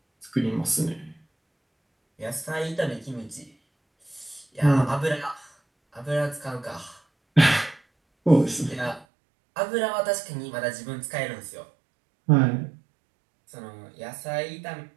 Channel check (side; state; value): left; drops out; at 9.1 s